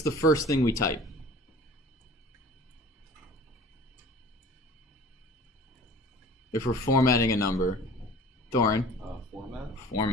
the first thing we type? If we're formatting a number. Thorin?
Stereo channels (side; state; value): both; normal; correlation 0.44